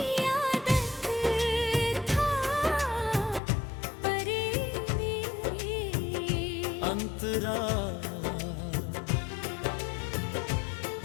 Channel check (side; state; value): right; drops out; at 3.4 s